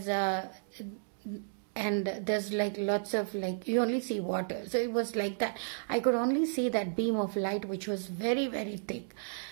like lots of like, you only see water. So it was like that. I could only see that beam of light, which was very, very thick,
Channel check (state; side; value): silent; left; digital silence